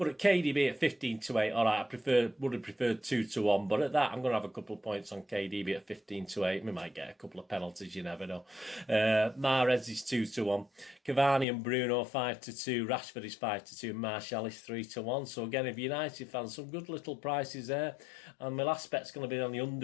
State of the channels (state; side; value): drops out; right; at 11.5 s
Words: at KDB at 15-8. All right, would have preferred 2-1, but at that, I'm going to have a couple of points on KDB at 15-8. We might get a couple of penalties, you never know. Mahrez is 2-1. Cavani and Bruno 5-2. Rashford is 5-2. Martial is 3-1. So again, if United fans, some good little prices there. And my last bet's going to be on the